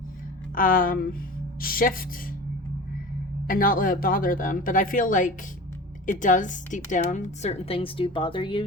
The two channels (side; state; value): both; normal; correlation 0.35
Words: shift and not let it bother them? But I feel like it does deep down. Certain things do bother